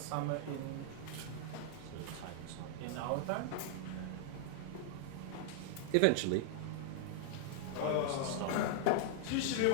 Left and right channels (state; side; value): different; both; correlation -0.01